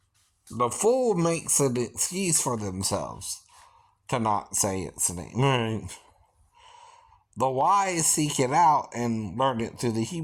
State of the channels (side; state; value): both; identical; correlation 1.00